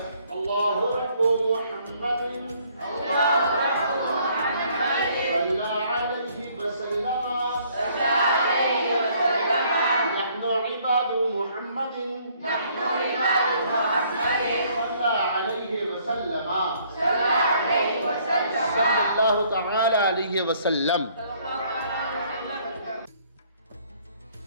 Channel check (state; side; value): inverted; both; correlation -0.63